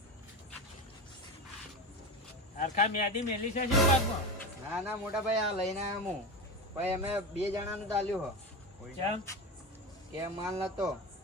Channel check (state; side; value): normal; both; correlation 0.24